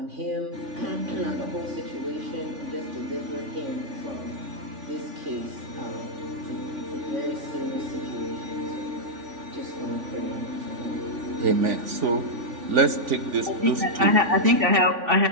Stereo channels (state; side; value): late; left; 3.5 ms